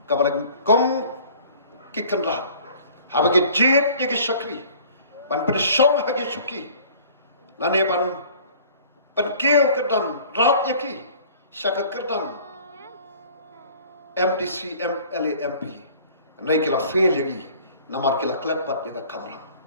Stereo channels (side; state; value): both; inverted; correlation -0.50